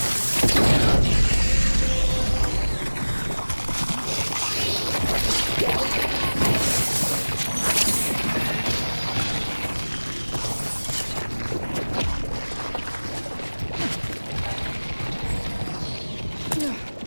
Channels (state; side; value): inverted; both; correlation -1.00